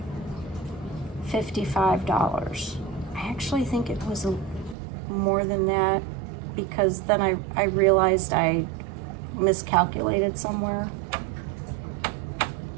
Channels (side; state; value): left; drops out; at 4.8 s